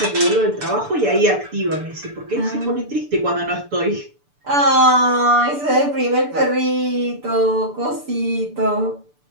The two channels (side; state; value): left; late; 6.9 ms